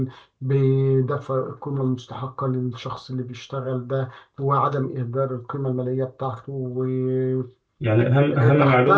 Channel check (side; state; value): both; identical; correlation 1.00